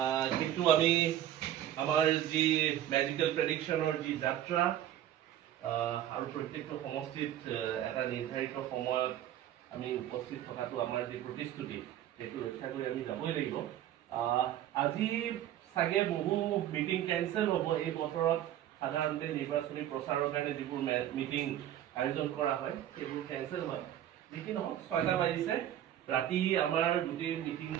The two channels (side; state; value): left; quieter; 11.9 dB